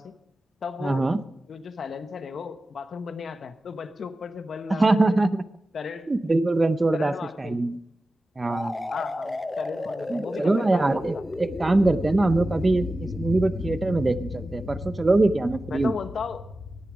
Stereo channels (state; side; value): normal; both; correlation 0.94